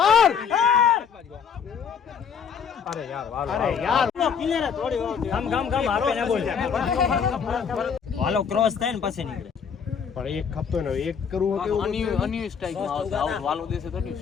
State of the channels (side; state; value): right; quieter; 6.9 dB